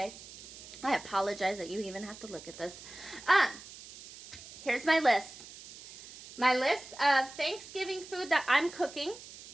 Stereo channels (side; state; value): right; noise; hiss, 16 dB below the sound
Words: I apologize that you even have to look at this. Here's my list. My list of Thanksgiving food that I'm cooking.